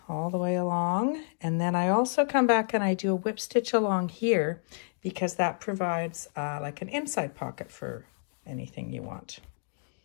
all the way along. And then I also come back and I do a whip stitch along here because that provides like an inside pocket for anything you want.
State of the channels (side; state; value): right; silent; digital silence